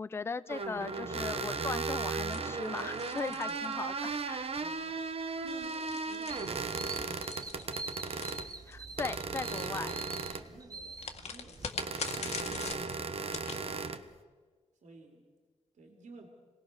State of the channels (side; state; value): both; normal; correlation 0.26